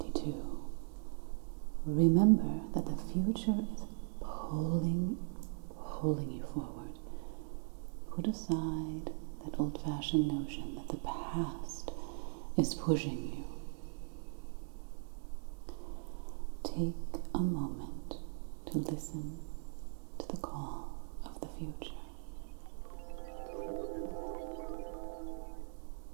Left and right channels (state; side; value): silent; left; digital silence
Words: remember that the future is pulling you forward. Put aside that old-fashioned notion that the past is pushing you. Take a moment to listen to the call of the future.